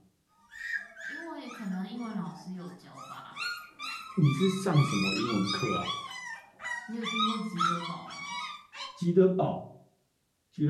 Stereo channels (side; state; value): both; identical; correlation 1.00